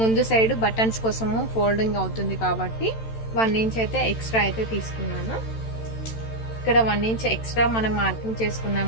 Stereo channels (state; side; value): late; right; 13 ms